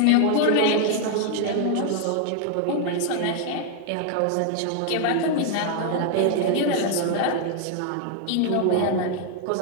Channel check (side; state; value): both; different; correlation 0.00